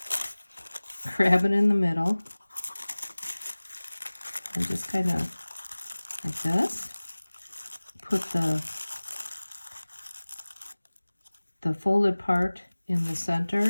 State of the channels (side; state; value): both; inverted; correlation -1.00